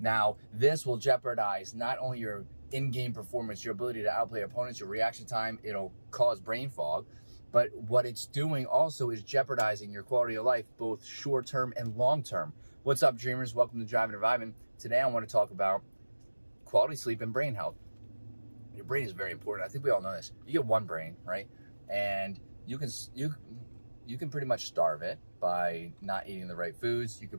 this will jeopardize not only your in-game performance, your ability to outplay opponents, your reaction time, it'll cause brain fog, but what it's doing also is jeopardizing your quality of life, both short-term and long-term. What's up, dreamers? Welcome to Driving and Vibing. Today I want to talk about quality sleep and brain health. Your brain is very important. I think we all know this. You get one brain, right? And you can pretty much starve it by not eating the right foods. You can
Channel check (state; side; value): inverted; both; correlation -1.00